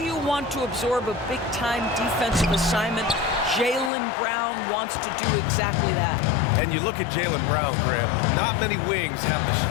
want to absorb a big-time defensive assignment? Jaylen Brown wants to do exactly that. And you look at Jaylen Brown, Graham. Not many wings have the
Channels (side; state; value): right; drops out; at 3.9 s